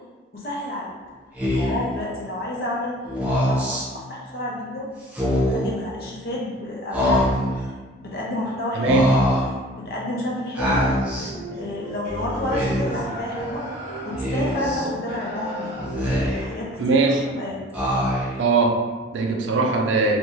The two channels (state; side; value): normal; both; correlation 0.42